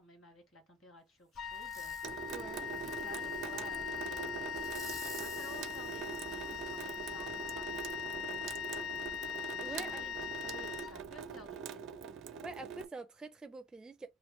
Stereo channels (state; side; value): normal; both; correlation 0.41